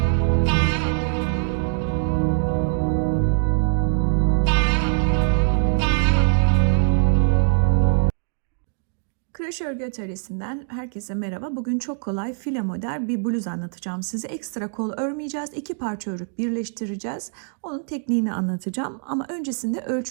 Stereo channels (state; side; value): silent; left; 62 dB below the other